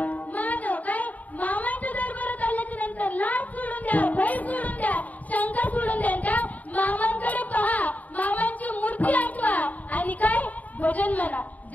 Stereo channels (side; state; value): right; late; 0.074 ms